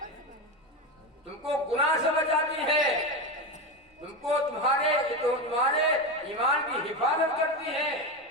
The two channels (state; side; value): normal; both; correlation 0.17